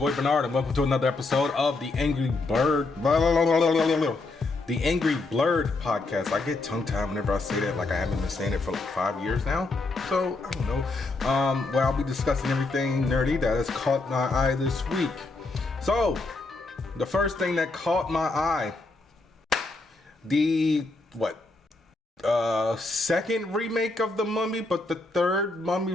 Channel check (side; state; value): right; quieter; 3.3 dB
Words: Bernard, and welcome to another episode of the Angry Blerd. The Angry Blerd podcast. I get tongue-tied whenever I say that, like I haven't been saying it for like 5 years now. So, I don't know. Where I'll be discussing everything nerdy that has caught my eye this week. So, the first thing that caught my eye, the, second remake of The Mummy, but the third